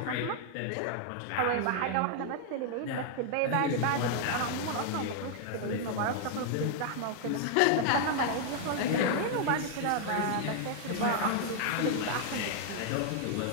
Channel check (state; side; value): different; both; correlation 0.00